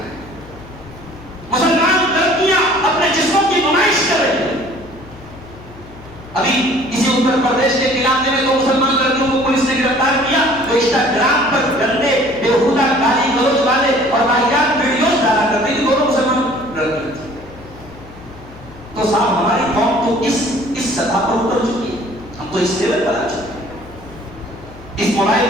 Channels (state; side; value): noise; left; hum, 19 dB below the sound